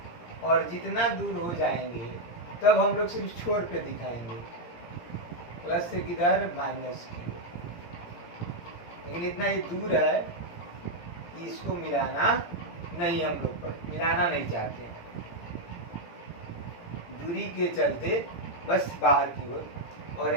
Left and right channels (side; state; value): right; late; 17 ms